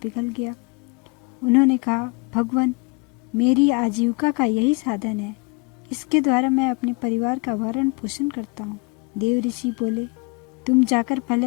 गया। उन्होंने कहा, भगवान, मेरी आजीविका का यही साधन है। इसके द्वारा मैं अपने परिवार का भरण पोषण करता हूँ। देव ऋषि बोले, तुम जाकर पहले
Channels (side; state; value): right; quieter; 28.6 dB